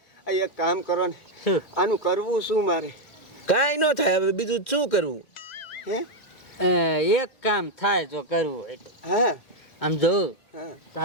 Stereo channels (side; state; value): right; late; 2.0 ms